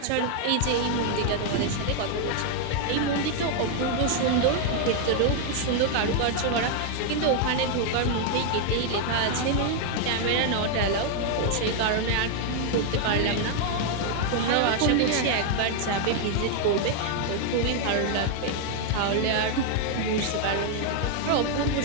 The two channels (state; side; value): different; both; correlation 0.00